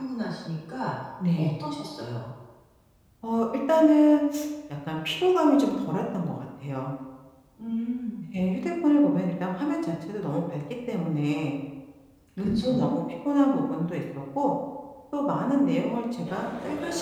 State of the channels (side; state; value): both; identical; correlation 1.00